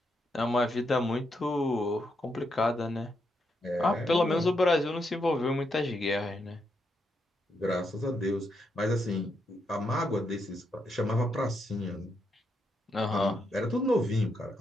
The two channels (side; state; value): both; normal; correlation 0.80